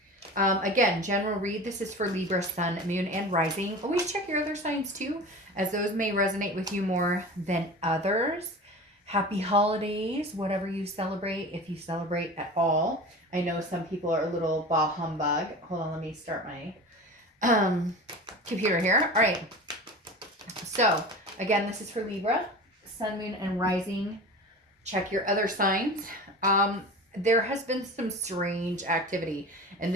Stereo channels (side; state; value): both; normal; correlation 0.34